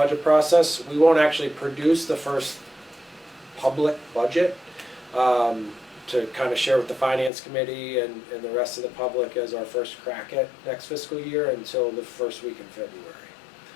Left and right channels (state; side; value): drops out; right; at 7.3 s